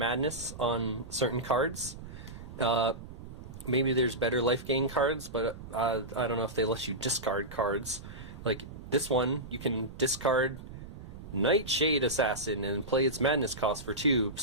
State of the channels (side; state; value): right; noise; rumble, 13 dB below the sound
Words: on certain cards. Maybe there's better life gain cards, but I don't know if they let you discard cards. Like this one, you can discard Nightshade Assassin and play its madness cost for 2.